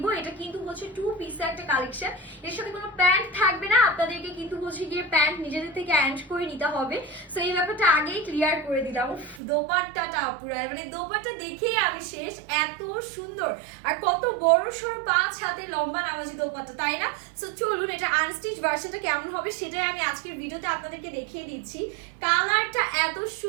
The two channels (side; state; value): left; drops out; at 9.4 s